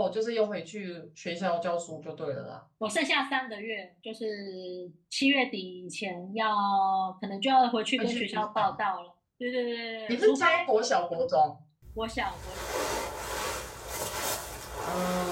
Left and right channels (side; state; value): both; identical; correlation 1.00